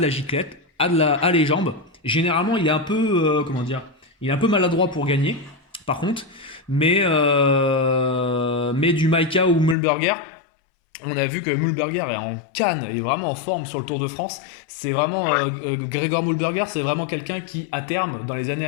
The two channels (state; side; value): drops out; right; at 9.8 s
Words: la giclette, a les jambes. Généralement, il est un peu, comment dire, il est un peu maladroit pour gagner, par contre. Mais du Maika ou Mühlberger, on a vu que Mühlberger est en canne, est vraiment en forme sur le Tour de France. C'est vraiment Gregor Mühlberger, c'est vraiment quelqu'un qui, à terme, dans les années